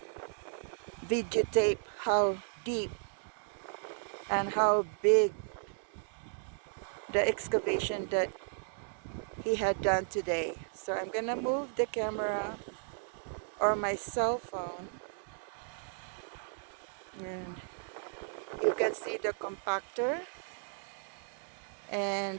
videotape how deep and how big the excavation that he had done today. So I'm gonna move the camera or my cell phone, and you can see the compactor, and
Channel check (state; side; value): silent; left; digital silence